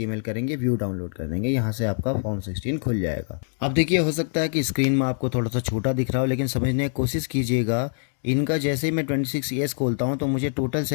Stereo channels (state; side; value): silent; right; digital silence